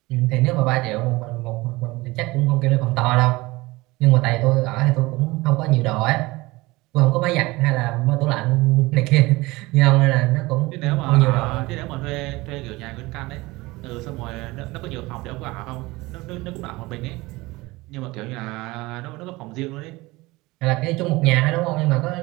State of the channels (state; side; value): quieter; left; 21.3 dB